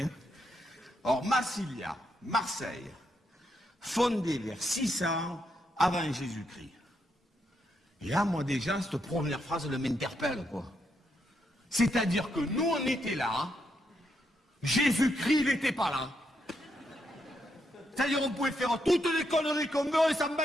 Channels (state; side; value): normal; both; correlation 0.80